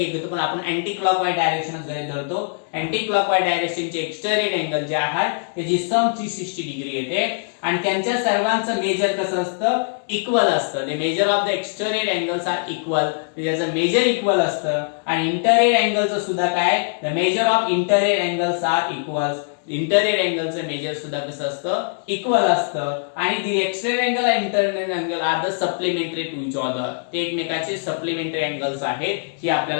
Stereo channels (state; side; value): silent; right; digital silence